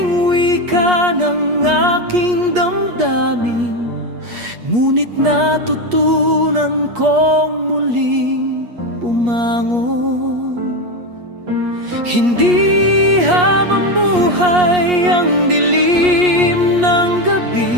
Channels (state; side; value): late; left; 8.4 ms